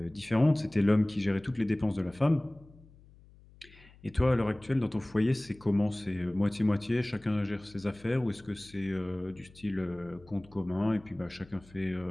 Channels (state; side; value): noise; left; hum, 24 dB below the sound